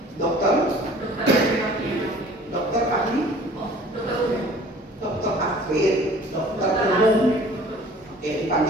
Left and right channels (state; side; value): normal; both; correlation 0.49